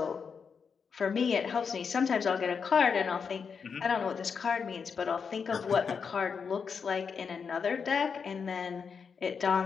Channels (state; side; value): quieter; right; 6.0 dB